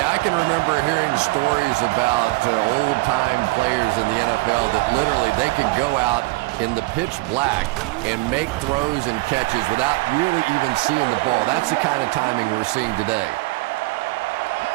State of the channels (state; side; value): quieter; left; 22.5 dB